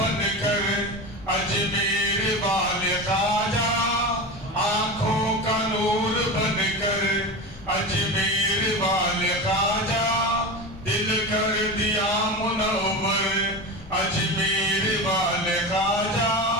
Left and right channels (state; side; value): noise; left; rumble, 20 dB below the sound